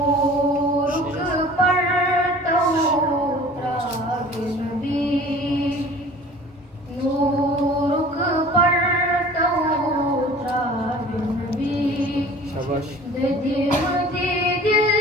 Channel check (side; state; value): both; normal; correlation 0.45